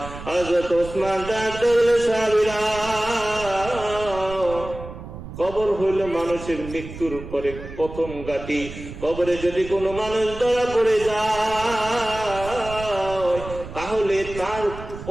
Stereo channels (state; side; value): noise; right; rumble, 12 dB below the sound